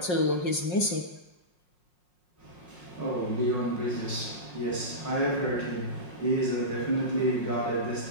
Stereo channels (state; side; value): late; right; 5.6 ms